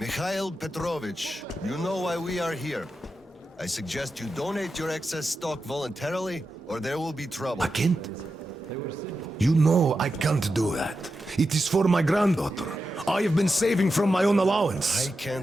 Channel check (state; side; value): normal; both; correlation 0.89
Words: Petrovich, you know why we are here. I suggest you donate your excess stock voluntarily, or there will be trouble. I can't. You know I can't do that. It is for my granddaughter. I have been saving from my own allowance. I